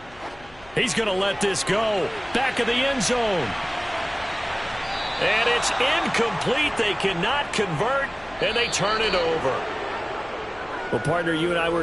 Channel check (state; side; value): noise; left; hum, 24 dB below the sound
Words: He's going to let this go. Back of the end zone. And it's incomplete. They cannot convert, and they turn it over. Well, partner, you and I